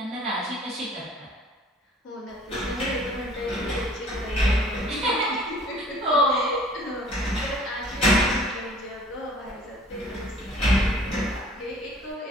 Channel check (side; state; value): both; normal; correlation 0.52